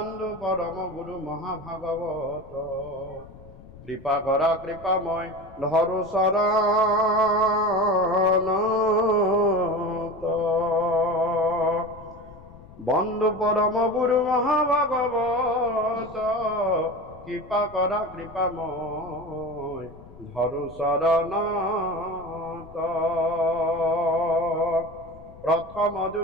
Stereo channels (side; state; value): left; noise; rumble, 20 dB below the sound